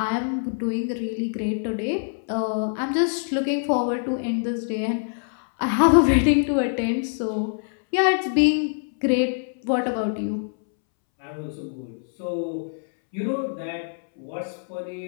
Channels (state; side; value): silent; right; 62 dB below the other